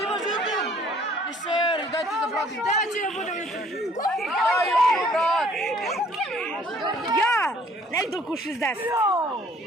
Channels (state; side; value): normal; both; correlation 0.58